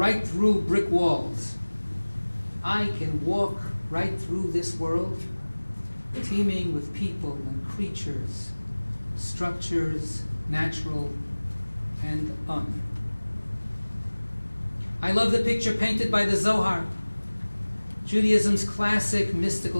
through brick walls, I can walk right through this world, teeming with people and creatures, structures, natural and un. I love the picture painted by the Zohar, Judaism's classic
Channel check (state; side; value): inverted; both; correlation -1.00